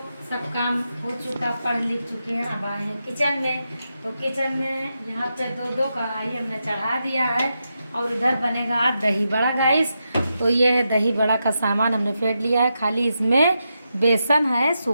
सब काम हो चुका, पढ़ लिख चुके हैं। अब आए हैं किचन में। तो किचन में यहाँ पे दो कढ़ाई हमने चढ़ा दिया है। और इधर बनेगा आज दही बड़ा गाइस। तो ये है दही बड़ा का सामान हमने फेंट लिया है। खाली इसमें बेसन है,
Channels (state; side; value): inverted; both; correlation -0.86